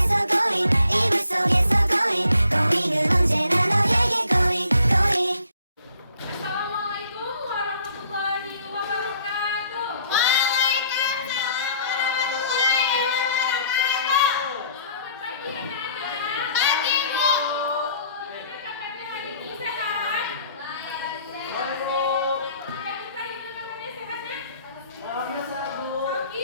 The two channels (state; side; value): inverted; both; correlation -0.61